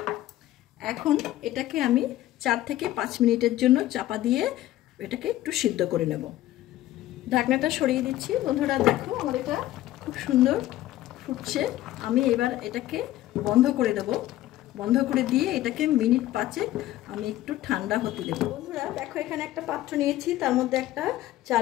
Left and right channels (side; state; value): right; quieter; 14.7 dB